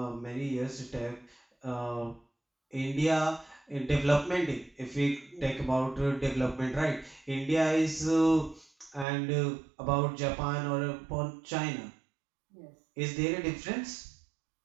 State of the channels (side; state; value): left; drops out; at 9.1 s